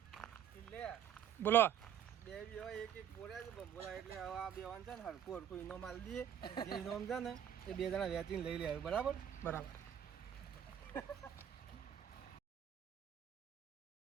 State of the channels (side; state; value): left; quieter; 9.6 dB